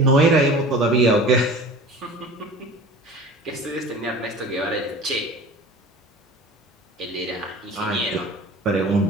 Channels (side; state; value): both; normal; correlation 0.40